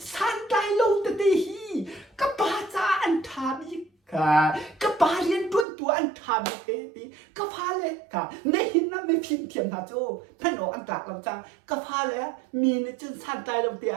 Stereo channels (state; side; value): drops out; left; at 5.7 s